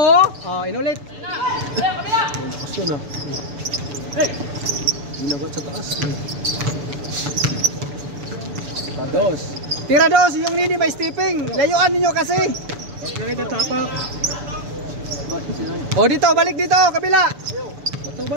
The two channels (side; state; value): left; late; 6.9 ms